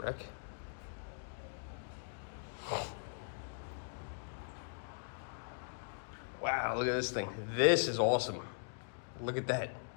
Wow, look at this thing. This is awesome. Look at that.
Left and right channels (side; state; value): right; silent; digital silence